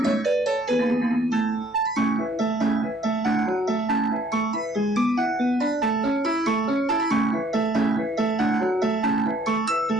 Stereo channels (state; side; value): normal; both; correlation 0.63